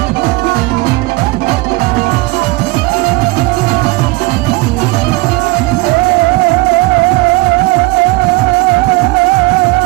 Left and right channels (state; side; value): quieter; left; 22.4 dB